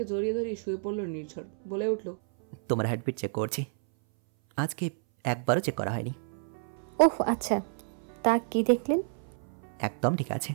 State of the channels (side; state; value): left; silent; 58 dB below the other